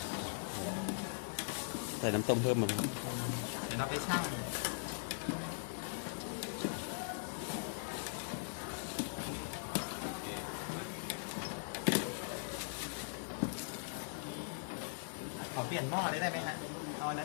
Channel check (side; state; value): right; silent; digital silence